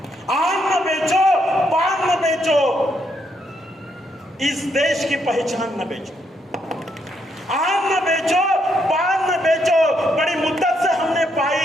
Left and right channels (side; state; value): both; normal; correlation 0.76